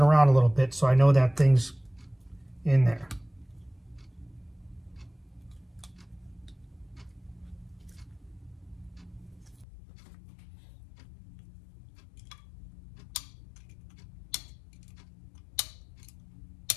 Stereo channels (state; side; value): drops out; right; at 9.7 s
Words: around a little bit so I know that thing's in there.